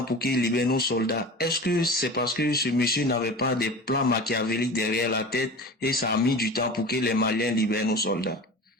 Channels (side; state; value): both; normal; correlation 0.34